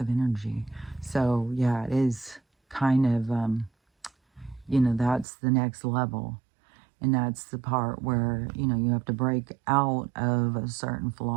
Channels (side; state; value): left; drops out; at 5.2 s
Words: of energy. So yeah, it is kind of you know, that's the next level. And that's the part where, you know, you have to break out of certain